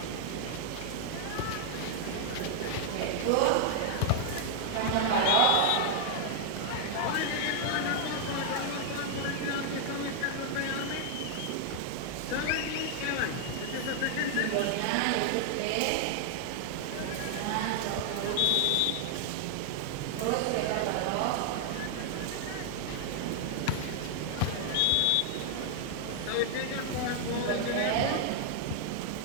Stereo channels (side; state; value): both; different; correlation 0.00